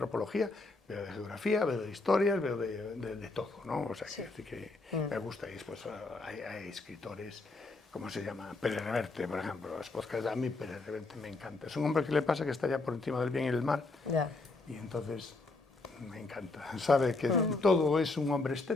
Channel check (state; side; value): quieter; right; 3.4 dB